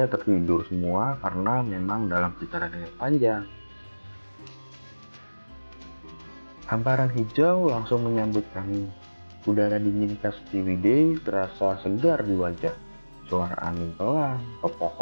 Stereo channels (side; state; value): both; inverted; correlation -1.00